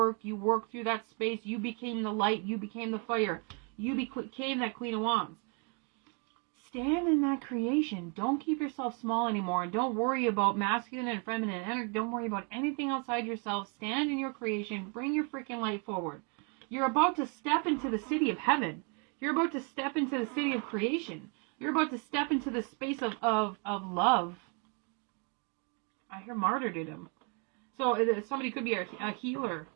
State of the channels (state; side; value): quieter; left; 35.2 dB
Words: You worked through that space. You became the light. You became the fire. You became that Queen of Wands. Stand in that creation. Don't keep yourself small anymore. And don't worry about masculine and feminine energy. Don't worry about anything outside yourself. Stand in your creation. Bring your freaking light forward. You're about to step into the city of heaven. You're about to step into the city of creation. You're about to step into the space of love. I hear martyrdom. So somebody could be a healer.